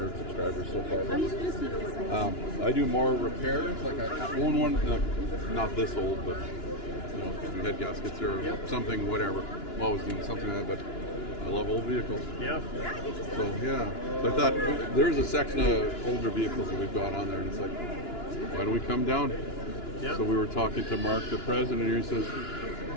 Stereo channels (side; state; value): right; late; 2.9 ms